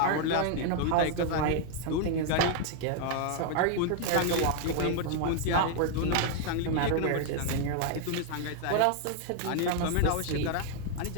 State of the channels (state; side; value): different; both; correlation 0.00